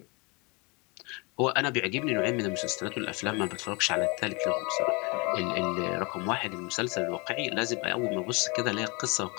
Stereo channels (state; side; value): quieter; right; 29.1 dB